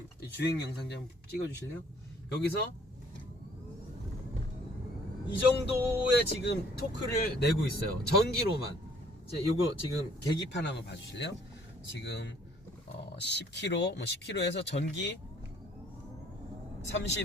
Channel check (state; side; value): normal; both; correlation 0.60